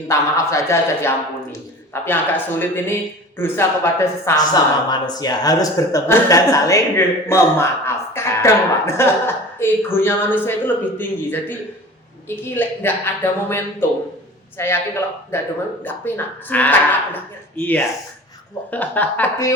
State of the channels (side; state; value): both; normal; correlation 0.39